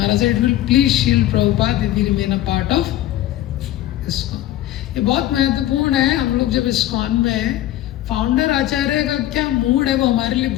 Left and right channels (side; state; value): right; quieter; 13.9 dB